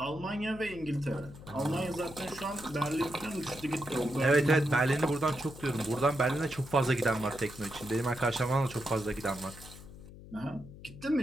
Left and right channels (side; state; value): left; noise; hum, 16 dB below the sound